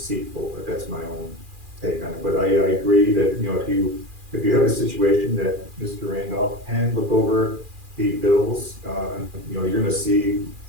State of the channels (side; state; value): left; late; 2.4 ms